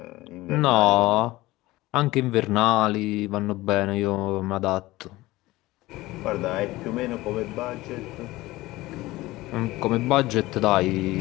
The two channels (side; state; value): right; quieter; 18.7 dB